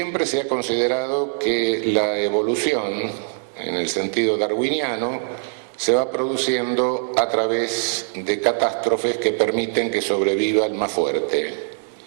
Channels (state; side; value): silent; left; digital silence